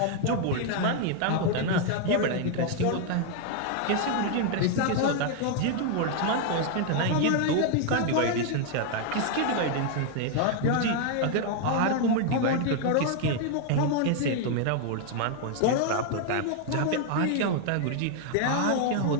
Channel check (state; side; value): different; both; correlation 0.00